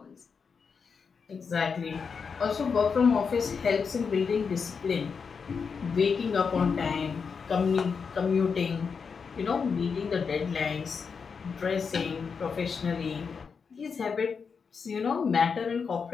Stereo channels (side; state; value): right; quieter; 5.7 dB